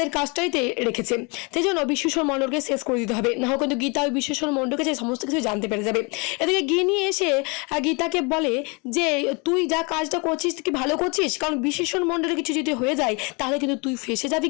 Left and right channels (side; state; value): right; quieter; 30.4 dB